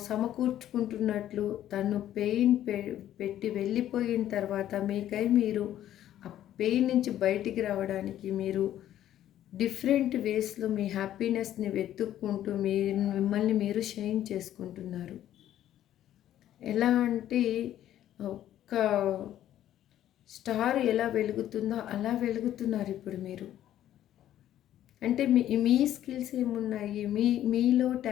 సమకూర్చుకుంటున్నట్లు తను పెయిన్ పెట్టి వెళ్ళిపోయిన తర్వాత మీకై మీరు ఆ పెయిన్ నుంచి బయటికి రావడానికి మీరు డిఫరెంట్ వేస్లో మీ హ్యాపీనెస్ని వెతుక్కుంటూ మిమ్మల్ని మీరు షైన్ చేసుకుంటున్నారు. ఎలా అంటే ఒక స్టార్ ఎలా వెలుగుతుందో అలా వెలుగుతున్నారు ఇప్పుడు మీరు. అంటే మీ స్కిల్స్ ఏమున్నాయి, మీలో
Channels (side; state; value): right; quieter; 12.0 dB